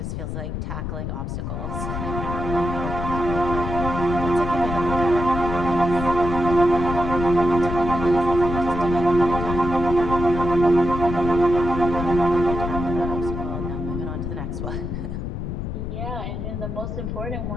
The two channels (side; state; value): left; noise; rumble, 5 dB below the sound